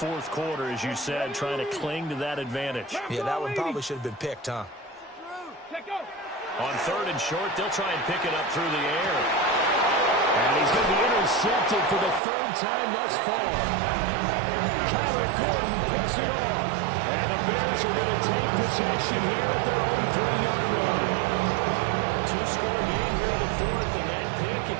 quarter, as you said, trying to cling to that advantage. Yeah, that one probably should have been picked, huh? On 3rd and short, they'll try and pick it up through the air. And he's going to be intercepted for the 3rd time thus far. Kyler Gordon picks it off. And the Bears are going to take possession here at their own 3-yard line. 2-score game here in the 4th, and that pick, it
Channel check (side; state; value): left; drops out; at 12.2 s